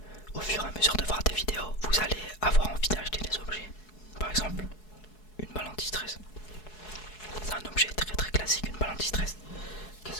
au fur et à mesure de voir des vidéos, vous allez avoir envie d'acheter des objets. Par exemple, une balle anti-stress. C'est un objet très très classique, une balle anti-stress. Qu'est-ce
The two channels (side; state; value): right; late; 4.7 ms